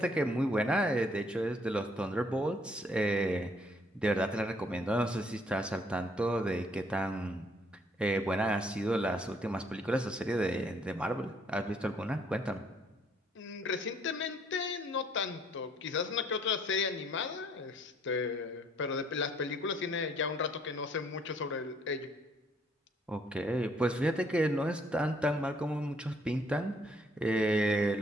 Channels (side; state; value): both; normal; correlation 0.65